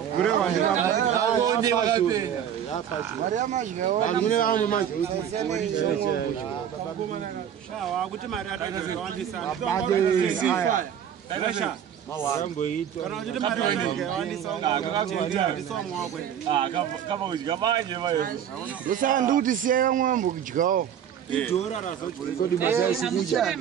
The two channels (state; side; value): quieter; left; 9.2 dB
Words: Gure wandira. Aonde wakapenda. Maria majgawo. Mune wangu maji. Shawa kuti mari atazowandisa. Taisha. Mambo ito. Kana kuti mari atazowandisa. Kama kudya manje bayo. Ndosa nduti siya mwambo kujgawo. Idora razochiri. Kodi mazasi kuja.